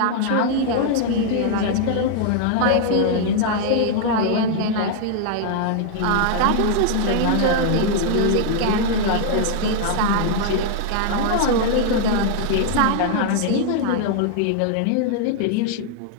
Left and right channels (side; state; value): both; different; correlation -0.01